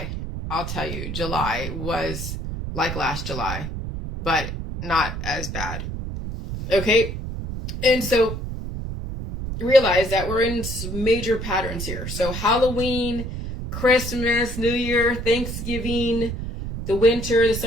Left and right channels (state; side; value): noise; right; rumble, 6 dB below the sound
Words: I'll tell you, July was like last July, but not as bad. Okay, and so realize that we're in some major patterns here. So Halloween, Christmas, New Year, Thanksgiving, the winter, the